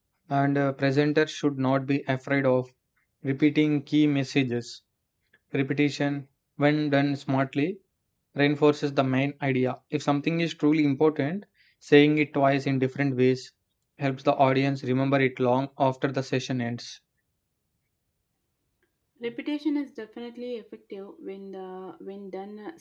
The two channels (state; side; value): identical; both; correlation 1.00